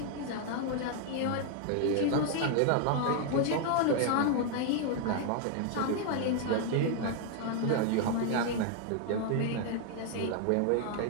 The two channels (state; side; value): different; both; correlation 0.00